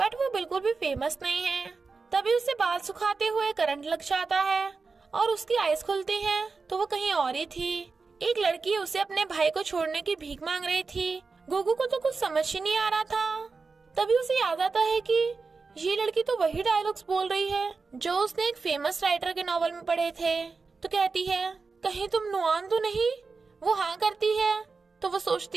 वो बिल्कुल भी फेमस नहीं है। तभी उसे बाल सुखाते हुए करंट लग जाता है और उसकी आईज खुलती हैं तो वो कहीं और ही थी। एक लड़की उसे अपने भाई को छोड़ने की भीख मांग रही थी। गुगू को तो कुछ समझ ही नहीं आ रहा था। तभी उसे याद आता है कि ये लड़की तो वही डायलॉग्स बोल रही है जो उसने एक फेमस राइटर के नॉवल में पढ़े थे। तो कहती है, कहीं तुम नुआन तो नहीं? वो हाँ करती है। तो वो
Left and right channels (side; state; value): left; quieter; 4.4 dB